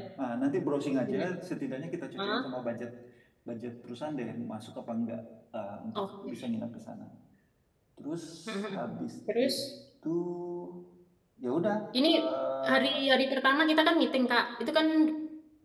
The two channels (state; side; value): identical; both; correlation 1.00